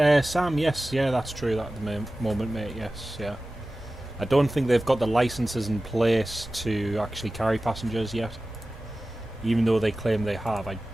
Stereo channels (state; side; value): normal; both; correlation 0.96